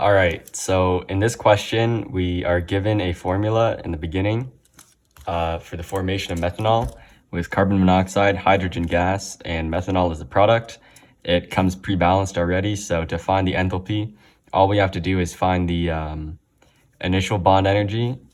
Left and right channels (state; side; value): identical; both; correlation 1.00